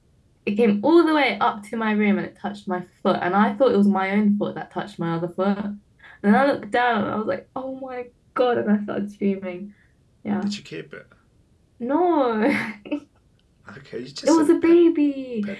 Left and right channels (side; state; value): both; identical; correlation 1.00